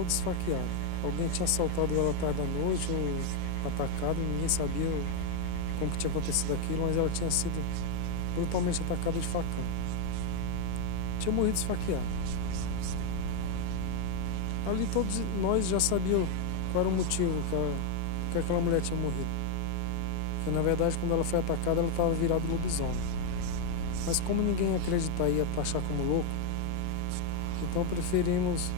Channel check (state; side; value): different; both; correlation 0.00